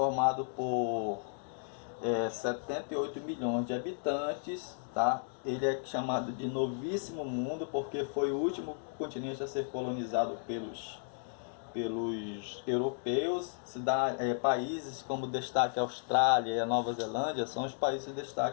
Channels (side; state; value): right; silent; digital silence